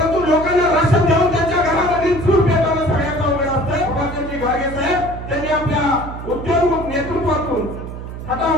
लोकांना राशन देऊन त्यांच्या घरामध्ये चूल पेटवणं सगळ्यात अवघड असतं। बाबाजी घागे साहेब त्यांनी आपल्या उद्योग नेतृत्वातून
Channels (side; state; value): right; noise; hum, 10 dB below the sound